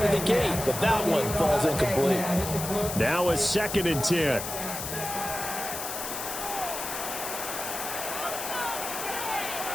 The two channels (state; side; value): noise; left; hiss, 6 dB below the sound